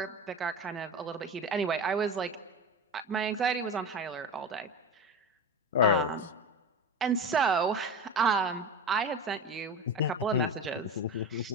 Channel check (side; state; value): both; normal; correlation 0.25